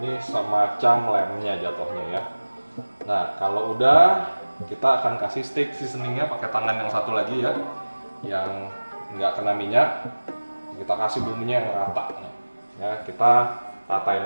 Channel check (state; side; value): inverted; both; correlation -1.00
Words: semacam lemnya jatuhnya ya. Nah, kalau udah, kita akan kasih steak seasoningnya pakai tangan yang satu lagi ya, yang nggak kena minyak. Kita kasih bumbunya yang rata ya, kita ratain